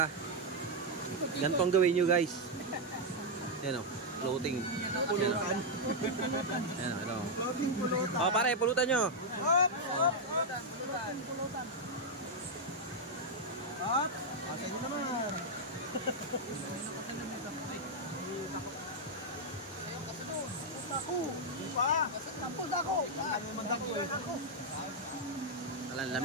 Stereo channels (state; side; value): normal; both; correlation -0.01